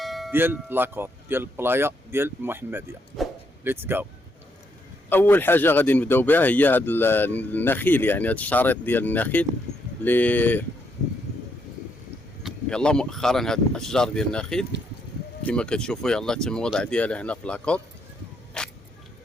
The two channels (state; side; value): normal; both; correlation 0.76